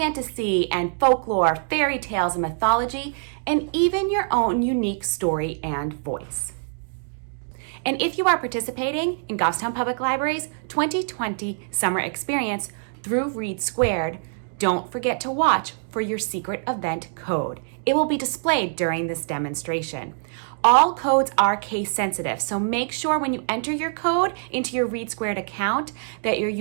and folklore, fairy tales and mythology, and even your own unique story and voice. And if you are participating in Goffstown Public Library's 2020 summer experience through READsquared, don't forget to watch for your secret event code. It will be displayed during this demonstration. All codes are case sensitive, so make sure when you enter your code into your READsquared account that you're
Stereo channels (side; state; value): left; silent; digital silence